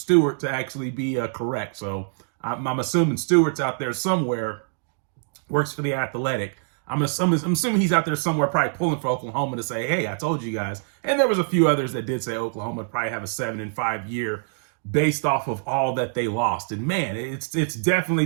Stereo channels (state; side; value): silent; left; digital silence